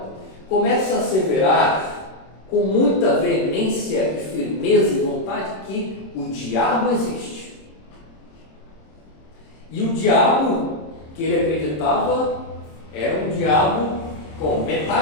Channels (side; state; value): right; late; 26 ms